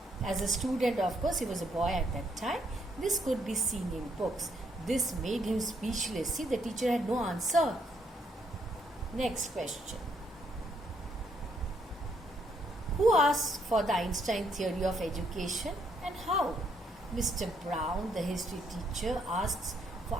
As a student, of course, he was a boy at that time. This could be seen in books. This made him speechless. See, the teacher had no answer. Next question. Who asked for the Einstein theory of education and how? Mr. Brown, the history teacher, asks for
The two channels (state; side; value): normal; both; correlation 0.73